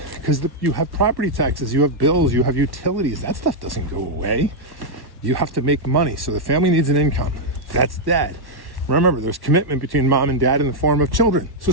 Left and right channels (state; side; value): late; left; 1.1 ms